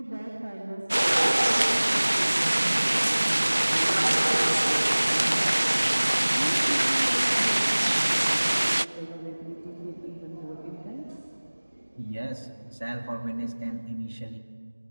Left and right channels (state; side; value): inverted; both; correlation -1.00